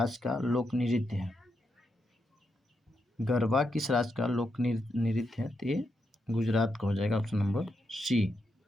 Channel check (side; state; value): both; normal; correlation 0.83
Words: का लोक नृत्य है? गरबा किस राज्य का लोक नृत्य है? तो ये गुजरात का हो जाएगा, ऑप्शन नंबर सी।